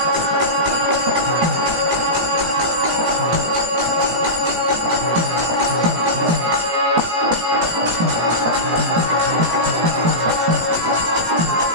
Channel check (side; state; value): left; late; 18 ms